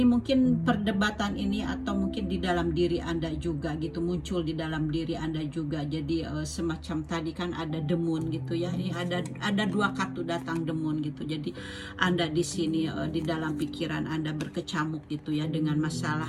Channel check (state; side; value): identical; both; correlation 1.00